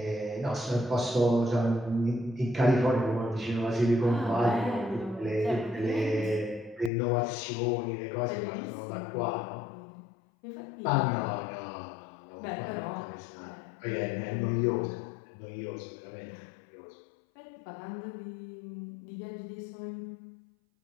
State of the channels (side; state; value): right; drops out; at 6.9 s